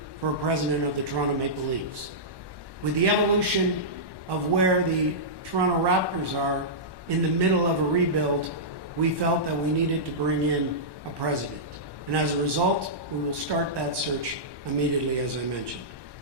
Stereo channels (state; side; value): late; left; 1.2 ms